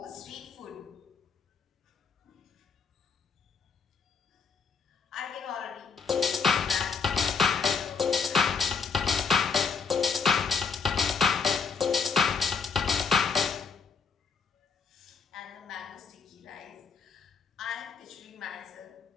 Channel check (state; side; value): quieter; right; 5.6 dB